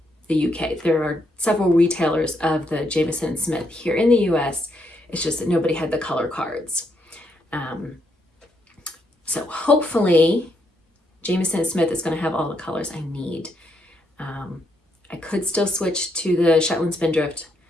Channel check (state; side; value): normal; both; correlation 0.77